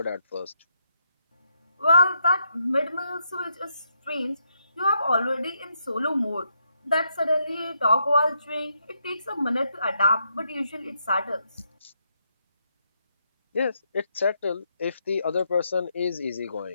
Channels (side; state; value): both; inverted; correlation -0.79